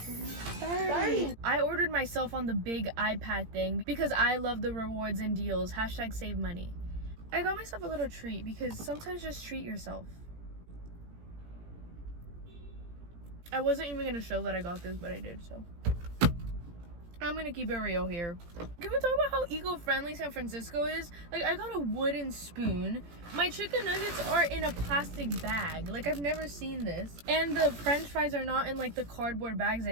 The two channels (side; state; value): left; late; 17 ms